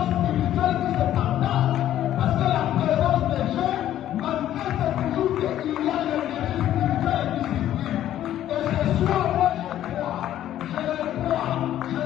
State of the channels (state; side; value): quieter; right; 12.1 dB